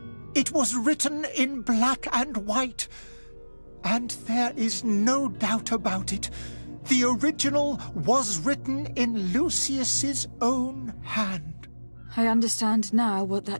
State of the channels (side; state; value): both; inverted; correlation -1.00